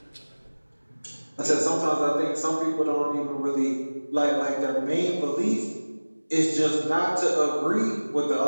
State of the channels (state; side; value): inverted; both; correlation -1.00